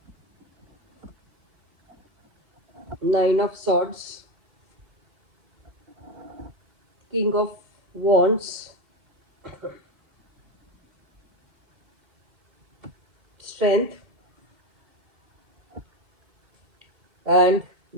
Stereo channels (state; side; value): late; left; 2.7 ms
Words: Nine of Swords, King of Wands, Strength, and